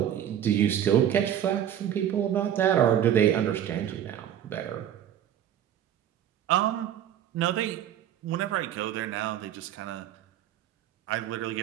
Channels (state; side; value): quieter; left; 10.5 dB